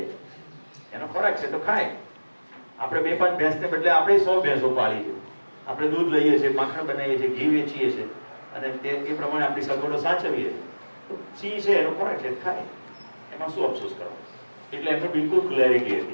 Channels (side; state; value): both; inverted; correlation -1.00